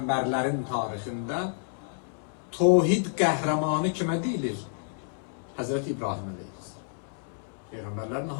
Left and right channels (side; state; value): right; silent; 58 dB below the other